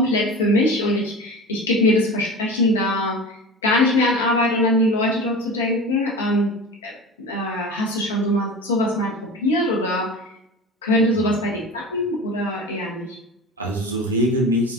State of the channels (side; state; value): both; normal; correlation 0.33